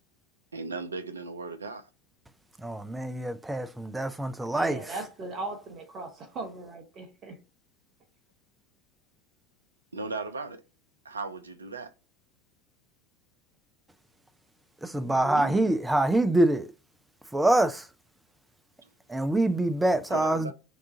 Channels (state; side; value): normal; both; correlation 0.83